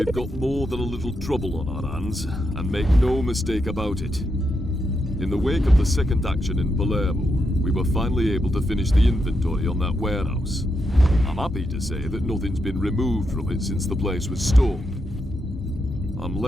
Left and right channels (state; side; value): normal; both; correlation 0.83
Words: got more than a little trouble on our hands, and make no mistake about it. In the wake of the second action in Palermo, we were finally able to finish the inventory on that warehouse. I'm happy to say that nothing's been removed from it since the place was stormed. I'm